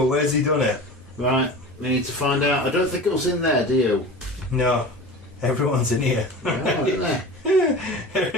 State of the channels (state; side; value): normal; both; correlation 0.35